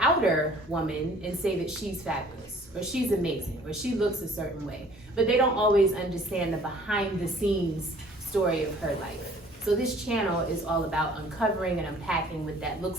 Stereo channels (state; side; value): normal; both; correlation 0.54